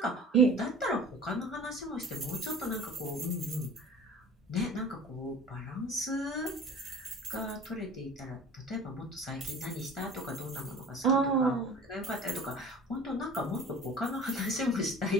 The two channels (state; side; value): normal; both; correlation 0.42